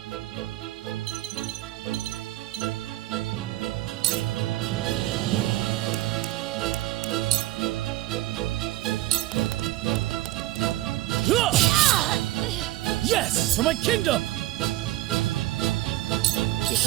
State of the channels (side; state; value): left; quieter; 16.4 dB